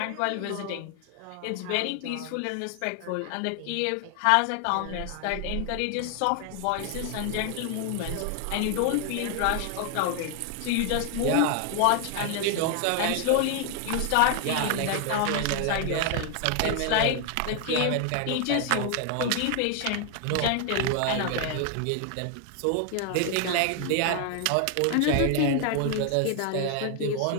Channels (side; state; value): both; different; correlation 0.00